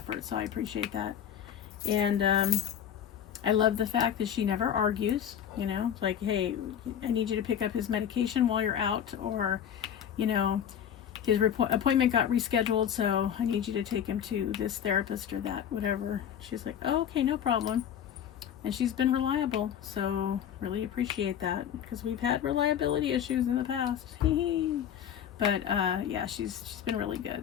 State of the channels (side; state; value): right; quieter; 9.3 dB